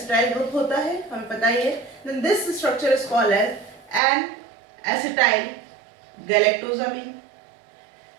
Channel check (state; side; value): drops out; left; at 4.0 s